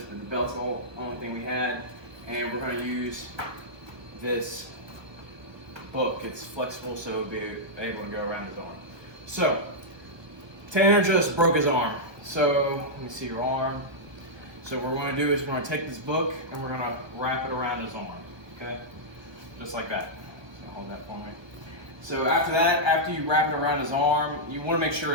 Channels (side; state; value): left; late; 1.4 ms